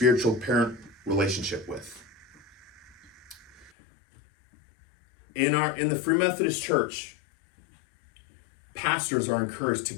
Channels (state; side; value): drops out; right; at 3.7 s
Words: parent relationship with? In the Free Methodist Church, pastors are encouraged to